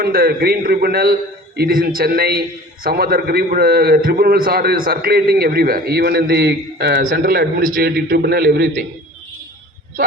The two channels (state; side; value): normal; both; correlation 0.43